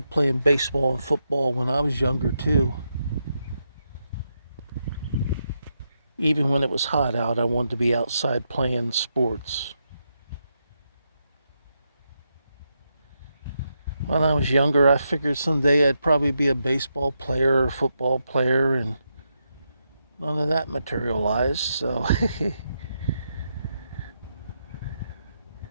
playing baseball and football when I was younger too. Even when it was hot out, I wanted to be outside playing sports. When I was younger, I figured someday I'd probably be a baseball player or a football player, and none of that materialized, so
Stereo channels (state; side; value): inverted; both; correlation -0.83